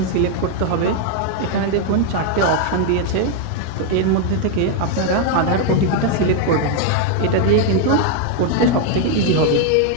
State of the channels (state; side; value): different; both; correlation 0.01